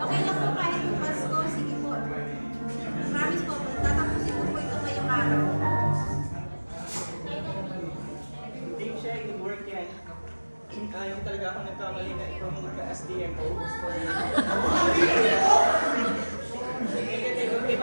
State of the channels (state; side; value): inverted; both; correlation -1.00